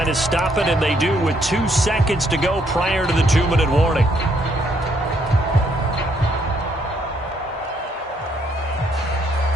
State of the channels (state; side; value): normal; both; correlation 0.70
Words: to stop it, and they do with 2 seconds to go prior to the 2-minute warning.